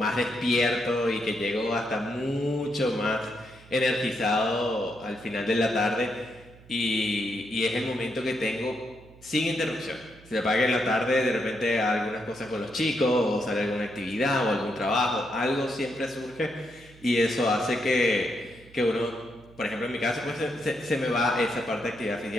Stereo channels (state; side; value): noise; right; hum, 23 dB below the sound